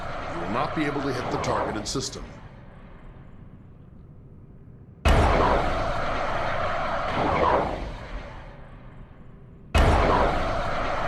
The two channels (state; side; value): identical; both; correlation 1.00